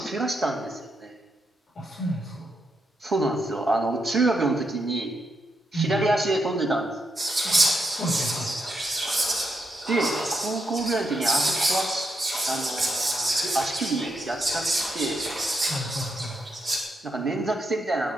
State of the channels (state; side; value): normal; both; correlation 0.82